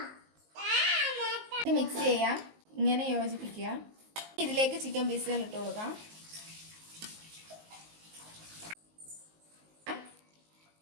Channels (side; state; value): left; late; 19 ms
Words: ഇത് മിക്സ് ചെയ്യാം, ഇങ്ങനെ യോജിപ്പിക്കുക. ഇതിലേക്ക് ചിക്കൻ പീസുകൾ ഇട്ട് കൊടുക്കാം.